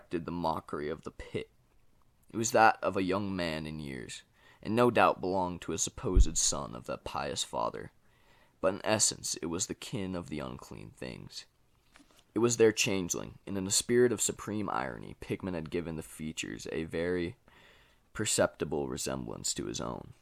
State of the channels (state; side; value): identical; both; correlation 1.00